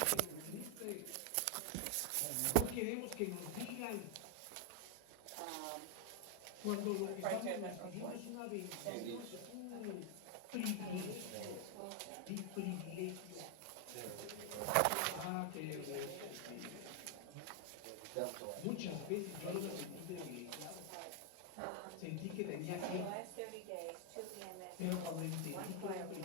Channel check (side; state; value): both; different; correlation 0.01